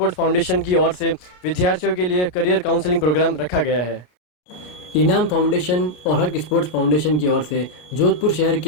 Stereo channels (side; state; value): right; late; 33 ms